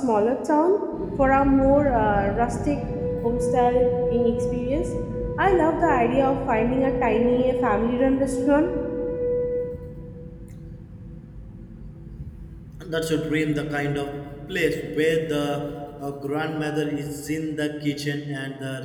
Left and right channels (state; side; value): identical; both; correlation 1.00